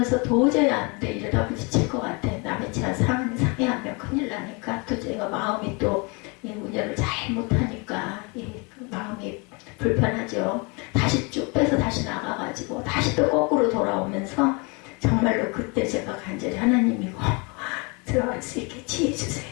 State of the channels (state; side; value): quieter; right; 30.3 dB